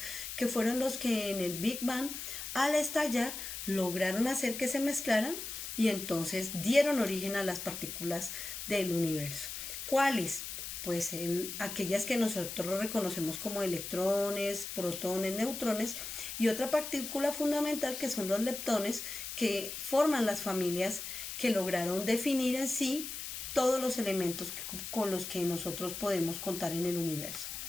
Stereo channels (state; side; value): noise; left; hiss, 7 dB below the sound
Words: que fueron los que en el Big Bang, al estallar, lograron hacer que se mezclaran y entonces dieron origen a las partículas del universo. ¿Cuáles? Pues aquellas que nosotros reconocemos como electrones, protones, neutrones, y otra partícula fundamental que son los leptones, que forman las familias que lograron definir en sí todos los elementos con los que nosotros podemos contar en el universo.